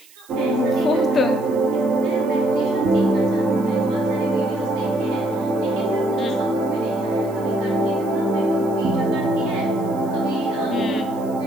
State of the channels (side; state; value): right; noise; hiss, 25 dB below the sound